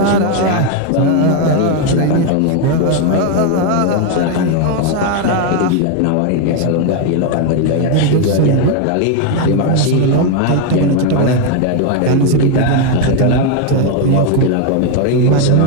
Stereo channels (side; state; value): both; different; correlation 0.01